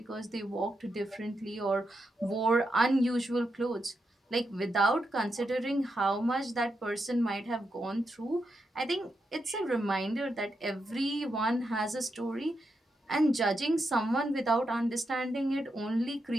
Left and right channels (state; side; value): normal; both; correlation 0.84